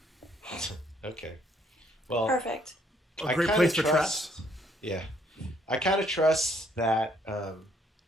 Okay. Well, Perfect. A I great kinda place for trust- traps. Yeah, I kind of trust that.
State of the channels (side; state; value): both; normal; correlation 0.67